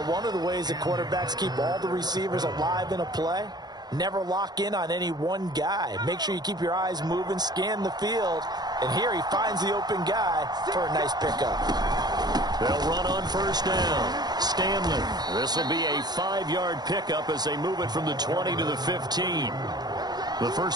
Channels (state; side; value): late; left; 0.20 ms